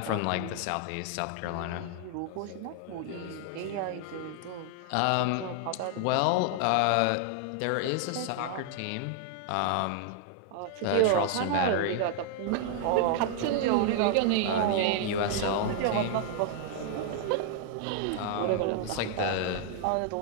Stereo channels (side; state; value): both; different; correlation 0.00